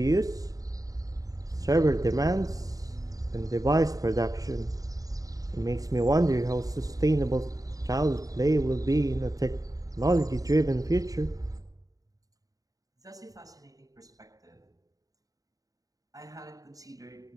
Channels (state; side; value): late; left; 0.17 ms